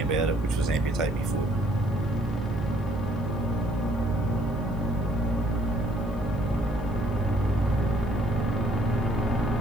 about it, which was amputate my foot.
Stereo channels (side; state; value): left; noise; hiss, 29 dB below the sound